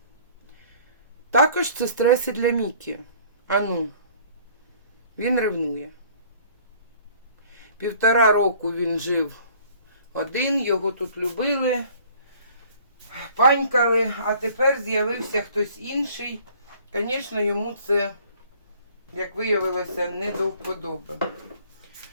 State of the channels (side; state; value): both; inverted; correlation -0.54